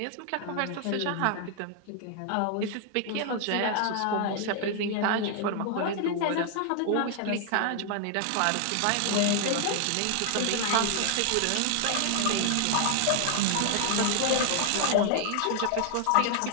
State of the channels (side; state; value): both; different; correlation 0.00